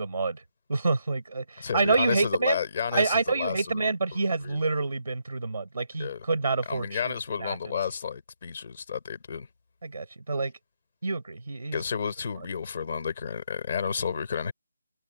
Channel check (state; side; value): inverted; both; correlation -0.77